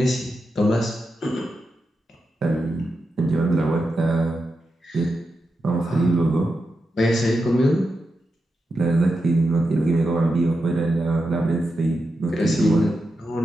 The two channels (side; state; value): both; normal; correlation 0.88